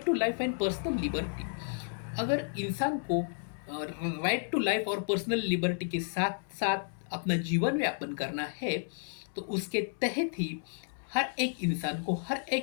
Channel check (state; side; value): silent; right; digital silence